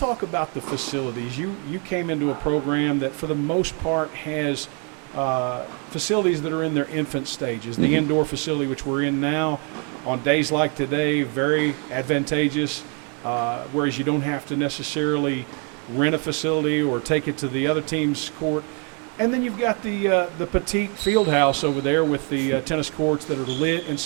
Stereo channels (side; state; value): left; quieter; 37.4 dB